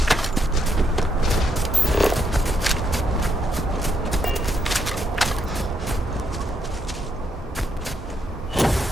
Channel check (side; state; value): both; normal; correlation 0.77